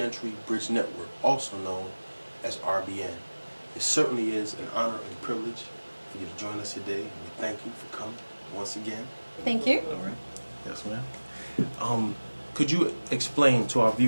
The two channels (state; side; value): inverted; both; correlation -1.00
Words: Bridge Network, also known as RBN. It certainly is an honor and privilege for you to join us today, and we thank you for coming once again. Thank you. All right. Yes, ma'am. Could you explain to our